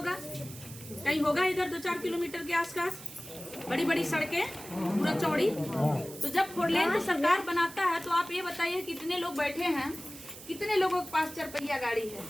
कहीं होगा इधर 2-4 किलोमीटर के आसपास, बड़ी बड़ी सड़कें पूरा चौड़ी। तो जब 4 लेंथ सरकार बनाता है तो आप ये बताइए कितने लोग बैठे हैं, कितने लोगों के पास 4 पहिया गाड़ी है?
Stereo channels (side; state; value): right; noise; hiss, 15 dB below the sound